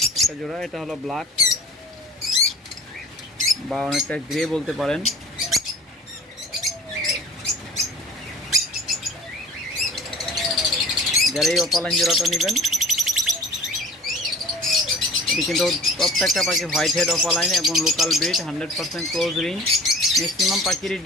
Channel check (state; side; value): normal; both; correlation 0.44